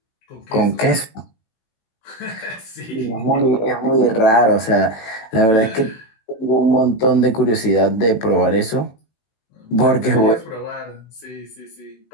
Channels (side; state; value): right; late; 18 ms